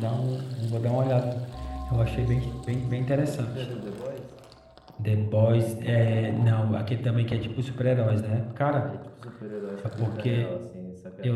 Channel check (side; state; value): both; identical; correlation 1.00